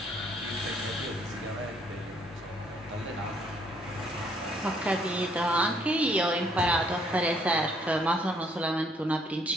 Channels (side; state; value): both; normal; correlation 0.66